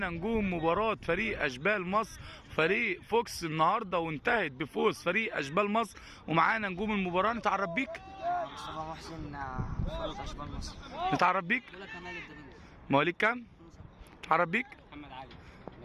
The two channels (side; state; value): both; identical; correlation 1.00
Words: نجوم مباراه فريق اشبال مصر فريق فوكس النهارده، وانتهت بفوز فريق اشبال مصر. ومعانا نجوم المباراه. نتعرف بيك؟ مصطفى محسن، فريق اشبال مصر. نتعرف بيك؟ مواليد كام؟ نتعرف بيك؟ محمد علي